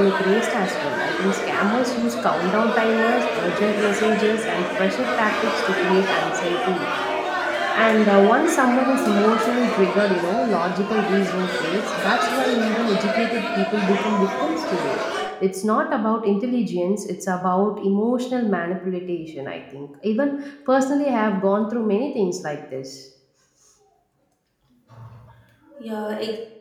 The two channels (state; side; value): identical; both; correlation 1.00